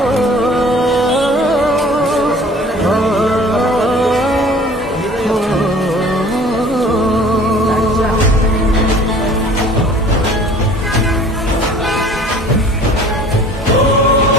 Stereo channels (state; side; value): normal; both; correlation 0.48